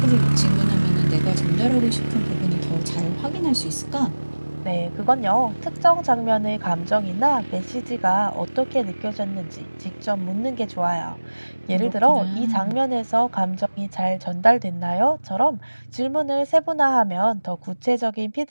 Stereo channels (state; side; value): inverted; both; correlation -1.00